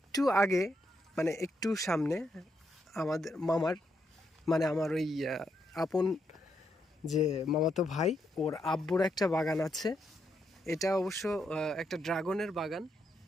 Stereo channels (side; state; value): both; normal; correlation 0.79